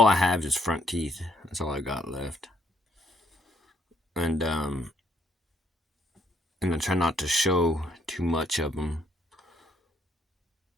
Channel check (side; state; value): both; normal; correlation 0.69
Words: I have is front teeth. That's all I got left. And and I try not to show too much of them.